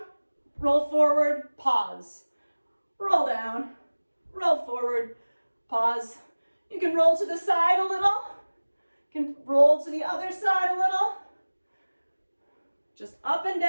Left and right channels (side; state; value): both; inverted; correlation -1.00